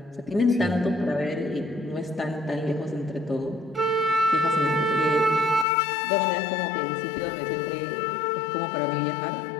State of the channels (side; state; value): right; drops out; at 5.7 s